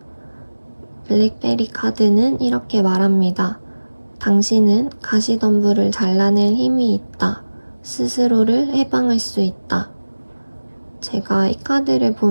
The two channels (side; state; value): both; inverted; correlation -1.00